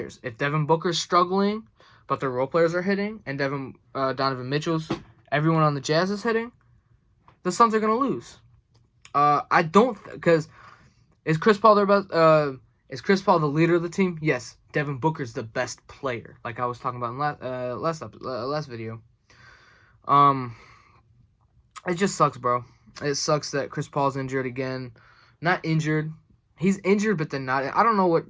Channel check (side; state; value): both; identical; correlation 1.00